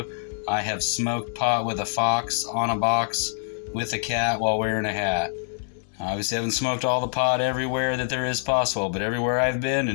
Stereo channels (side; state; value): right; silent; 62 dB below the other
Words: I have smoked pot with a fox on a box with a cat while wearing a hat. I obviously haven't smoked all the pot everywhere that there is possible, but everywhere I've been